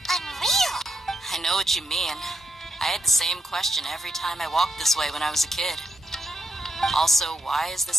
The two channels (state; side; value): normal; both; correlation 0.83